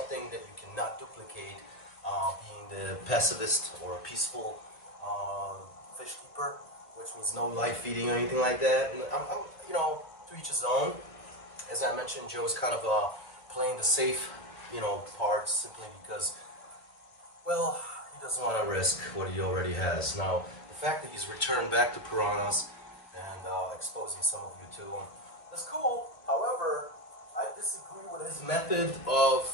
that you cannot duplicate. Being the pacifist or peaceful fish keeper, which means no live feeding or anything like that. And I'm you know, to each his own. As I mentioned, Joe's kind of playing the safe, you know, part simply because, well, he doesn't want to risk what he already has. Now, the fact that he's returned back to piranhas and exposing some of you to them is cool. However, I disagree with his method of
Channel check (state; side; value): late; right; 1.4 ms